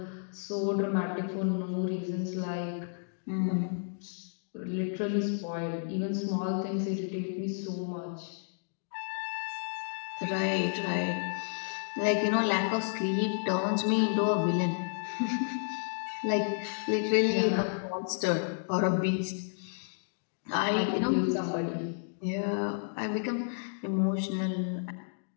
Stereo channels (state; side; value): silent; right; digital silence